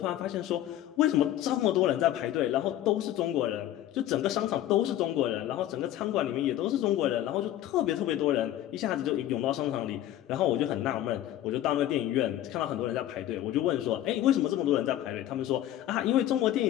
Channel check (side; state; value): right; quieter; 12.9 dB